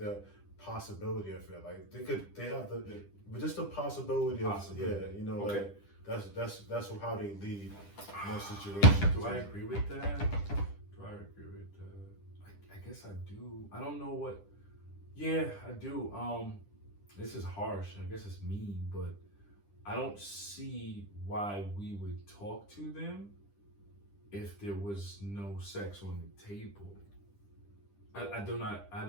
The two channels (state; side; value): late; right; 10 ms